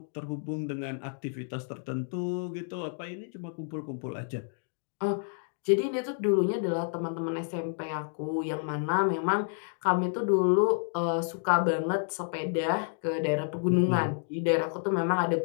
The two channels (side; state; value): right; silent; 58 dB below the other